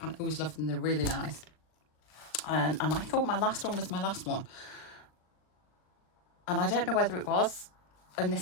and I always loved them. They're really nice. And I thought my last one was my last one. And I don't know whether it was. And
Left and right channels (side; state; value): right; late; 39 ms